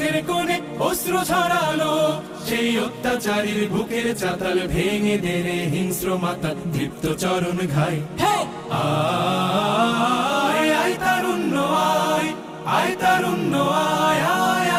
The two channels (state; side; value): identical; both; correlation 1.00